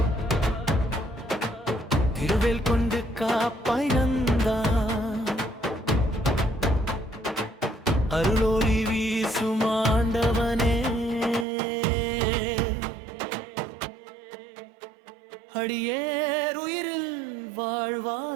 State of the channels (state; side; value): drops out; left; at 11.5 s